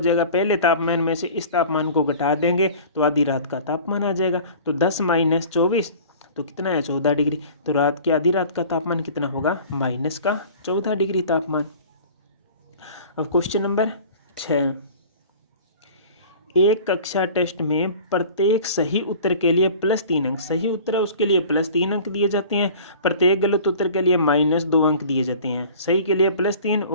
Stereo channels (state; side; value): inverted; both; correlation -0.43